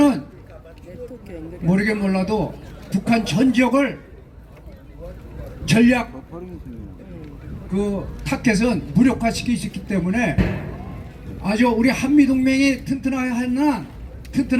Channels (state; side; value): identical; both; correlation 1.00